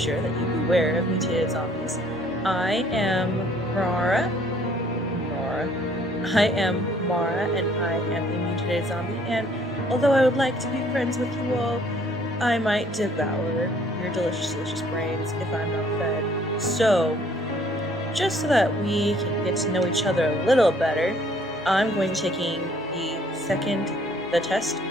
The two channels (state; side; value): normal; both; correlation 0.60